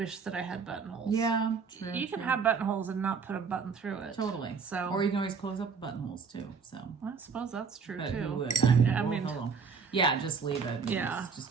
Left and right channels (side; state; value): left; quieter; 5.6 dB